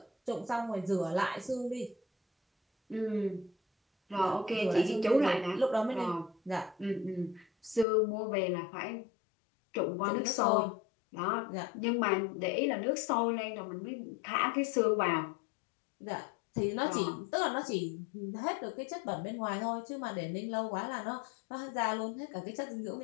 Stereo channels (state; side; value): drops out; right; at 7.9 s